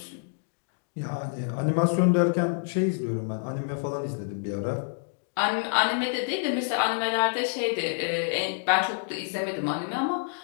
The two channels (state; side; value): silent; right; digital silence